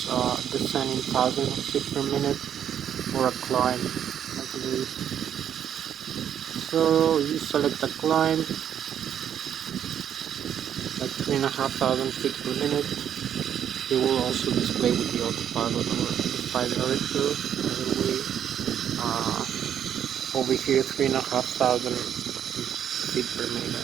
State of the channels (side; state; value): left; quieter; 9.3 dB